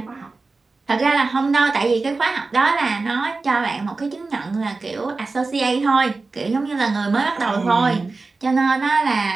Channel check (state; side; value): quieter; left; 3.8 dB